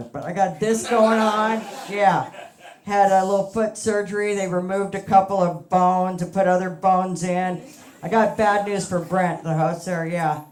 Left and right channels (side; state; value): both; identical; correlation 1.00